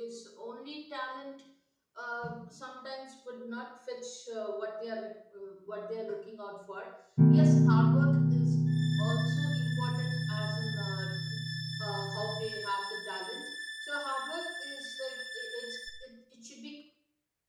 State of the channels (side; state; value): both; identical; correlation 1.00